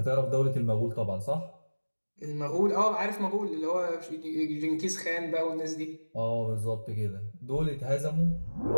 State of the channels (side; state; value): both; inverted; correlation -1.00